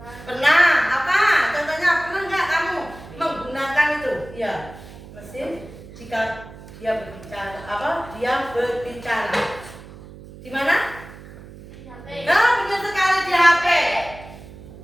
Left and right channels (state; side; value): noise; right; hum, 17 dB below the sound